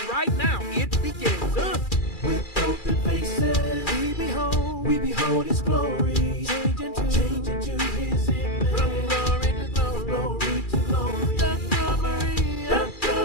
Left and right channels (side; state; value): right; late; 2.4 ms